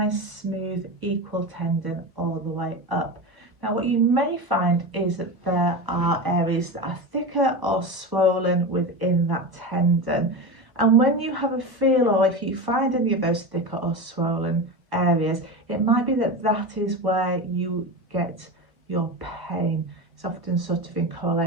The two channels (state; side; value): late; left; 1.1 ms